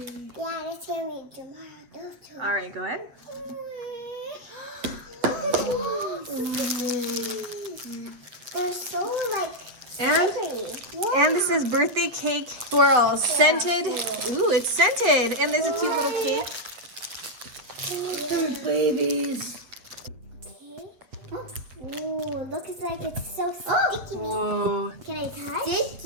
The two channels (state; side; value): late; left; 8.1 ms